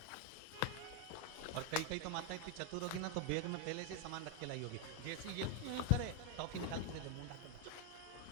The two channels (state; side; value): different; both; correlation 0.01